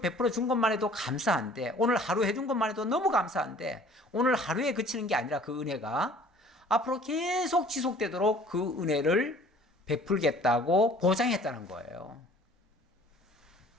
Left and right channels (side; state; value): both; normal; correlation 0.51